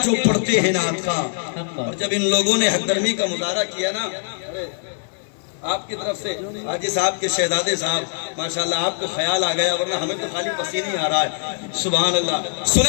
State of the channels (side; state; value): right; silent; digital silence